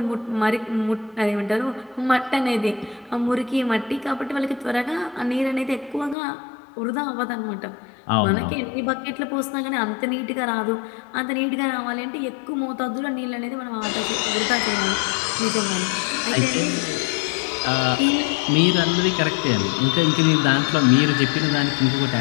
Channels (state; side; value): drops out; right; at 6.2 s